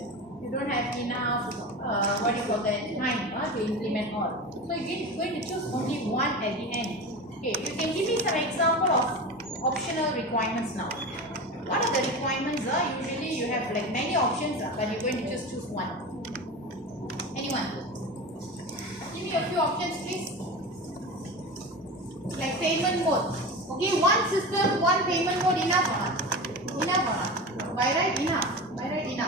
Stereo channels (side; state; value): both; normal; correlation 0.28